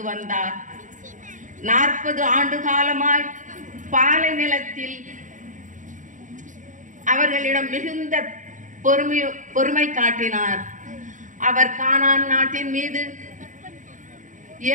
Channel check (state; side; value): late; left; 0.37 ms